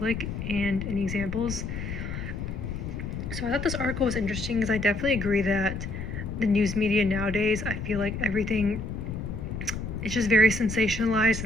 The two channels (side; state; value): left; noise; rumble, 6 dB below the sound